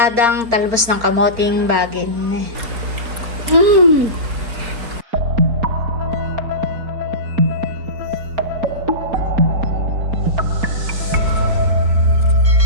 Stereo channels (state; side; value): late; left; 4.4 ms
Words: talbos ng kamoting bagin.